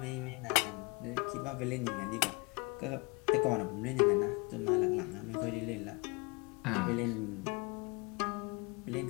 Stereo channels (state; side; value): quieter; right; 28.2 dB